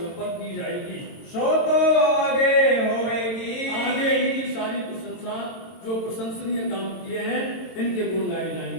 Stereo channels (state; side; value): late; right; 22 ms